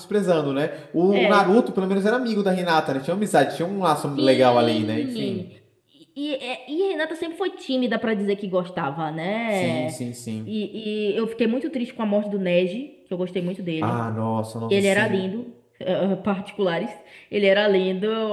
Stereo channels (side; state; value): both; identical; correlation 1.00